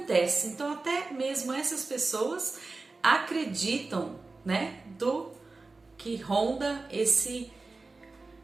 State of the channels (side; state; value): left; quieter; 3.6 dB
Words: Então até mesmo essas pessoas acreditam, né, do que ronda